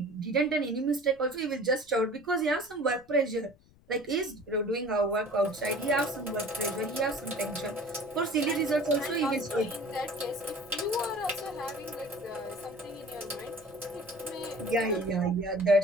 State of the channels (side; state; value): left; noise; rumble, 28 dB below the sound